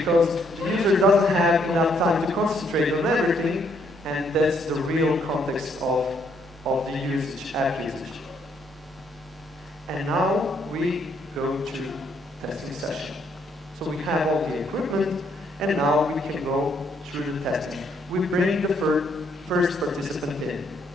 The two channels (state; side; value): normal; both; correlation 0.70